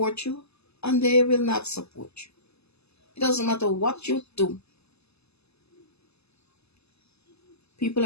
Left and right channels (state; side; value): late; right; 0.79 ms